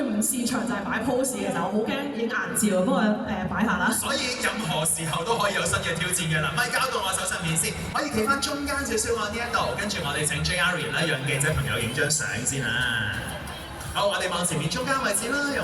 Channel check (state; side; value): identical; both; correlation 1.00